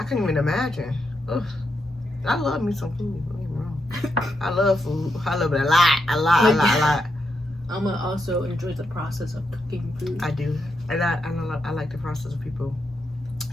can't even imagine. Ugh. I love me some food. Don't get me wrong. I love food. I love it a lot. A lot. I'm gonna also enjoy the process of cooking food. I do. And I like the process of people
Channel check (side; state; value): both; normal; correlation 0.83